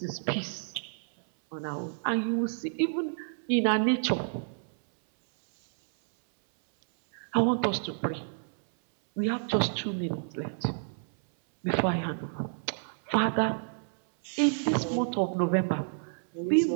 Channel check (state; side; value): silent; left; 58 dB below the other